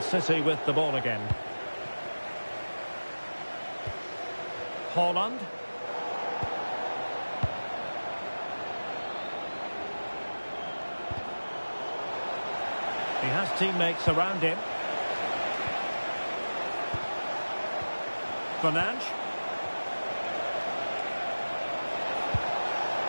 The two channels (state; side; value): inverted; both; correlation -1.00